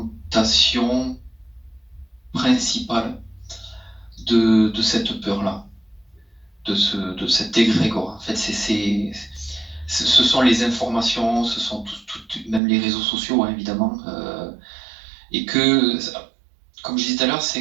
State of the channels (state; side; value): drops out; left; at 12.6 s